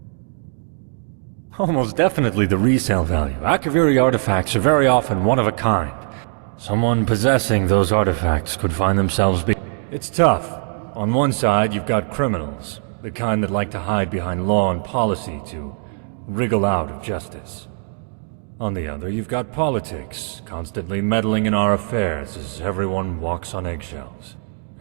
Almost definitely the resale value. Akaviri artifacts are very often one of a kind. Someone possessing those artifacts could find themselves It's tough. On one side, you've got criminals, the kind that like to hide behind law and policy to wriggle out of justice. On the other, you've got politics, constantly meddling in our affairs as everyone walks on eggshells.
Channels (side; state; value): left; silent; 55 dB below the other